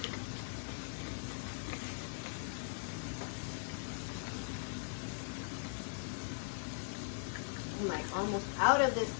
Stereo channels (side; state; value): right; silent; digital silence